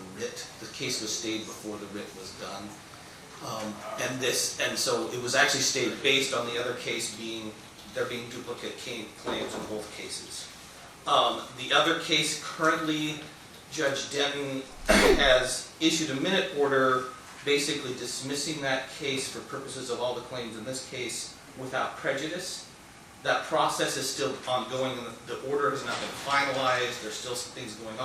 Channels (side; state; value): both; identical; correlation 1.00